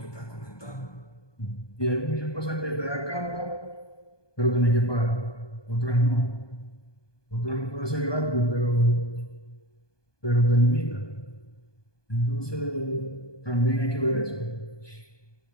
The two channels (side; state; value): right; late; 1.2 ms